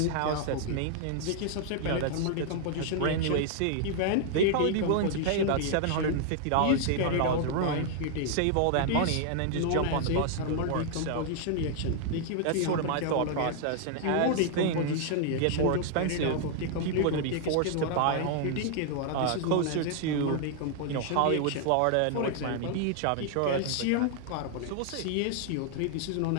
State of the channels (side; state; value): both; different; correlation 0.00